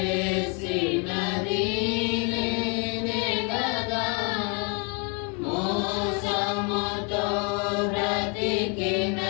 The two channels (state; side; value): quieter; right; 34.3 dB